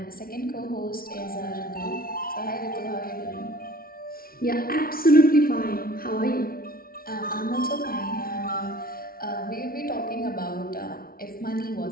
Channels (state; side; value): late; right; 0.43 ms